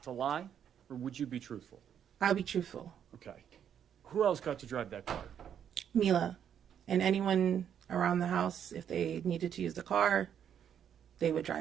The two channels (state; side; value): quieter; left; 8.8 dB